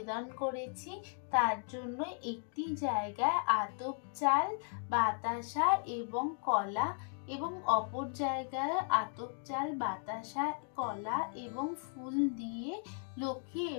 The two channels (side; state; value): right; silent; 54 dB below the other